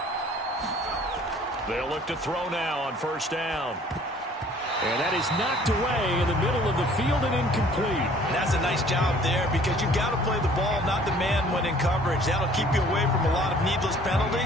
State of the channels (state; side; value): normal; both; correlation 0.54